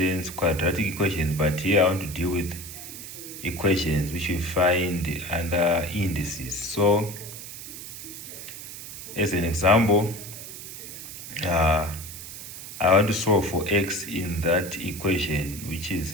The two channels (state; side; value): noise; right; hiss, 11 dB below the sound